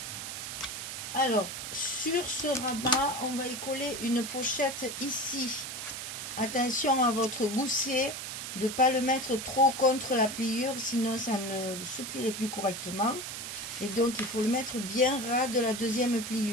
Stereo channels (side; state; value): right; noise; hiss, 6 dB below the sound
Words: Alors, sur ce rabat, on va y coller une pochette ici. Attention à votre gousset, de ne pas le mettre trop contre la pliure, sinon ça ne se plierait plus correctement. Et donc, il faut le mettre bien ras de la deuxième